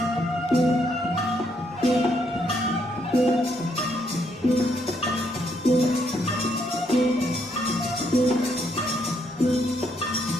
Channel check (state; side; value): normal; both; correlation 0.74